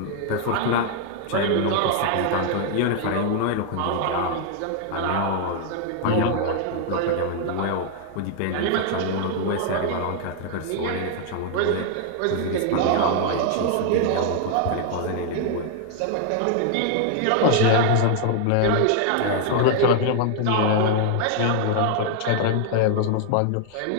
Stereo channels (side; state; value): both; different; correlation 0.00